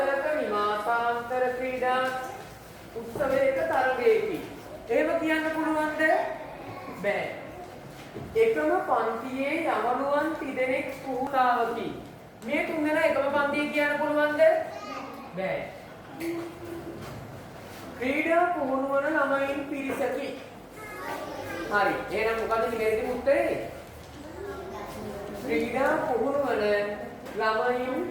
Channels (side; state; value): both; identical; correlation 1.00